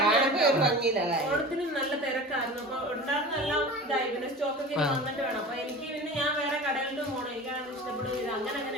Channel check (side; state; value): both; normal; correlation 0.35